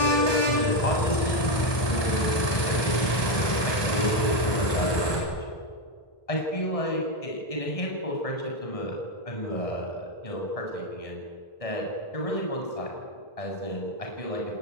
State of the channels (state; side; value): late; right; 1.2 ms